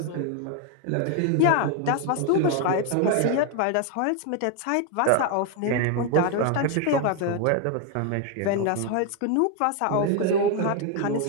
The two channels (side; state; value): both; different; correlation 0.01